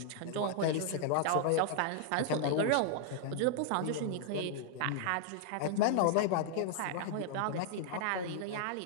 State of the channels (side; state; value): both; different; correlation 0.00